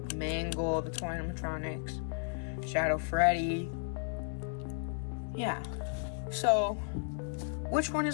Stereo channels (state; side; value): silent; right; 55 dB below the other